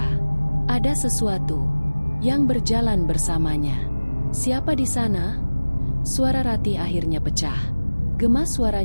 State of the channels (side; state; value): both; inverted; correlation -1.00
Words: Ada sesuatu yang berjalan bersamanya. Siapa di sana? Suara Ratih akhirnya pecah. Gema